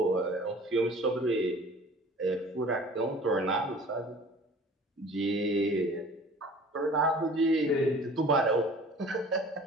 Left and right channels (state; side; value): normal; both; correlation 0.46